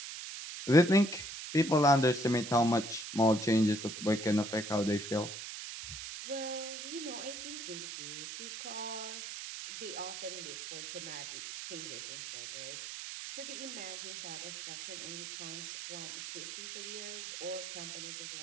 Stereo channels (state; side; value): noise; right; hiss, 8 dB below the sound